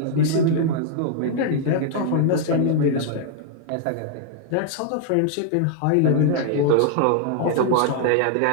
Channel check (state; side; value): different; both; correlation -0.01